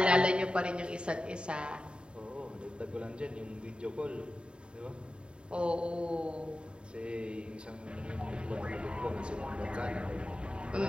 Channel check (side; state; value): left; late; 0.052 ms